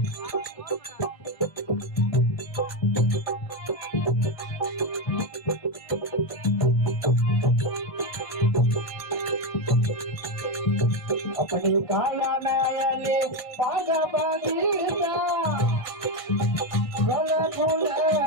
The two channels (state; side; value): late; right; 1.6 ms